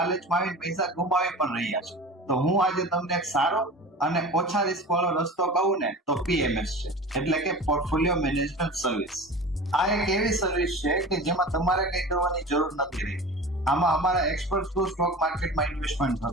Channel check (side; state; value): both; normal; correlation 0.35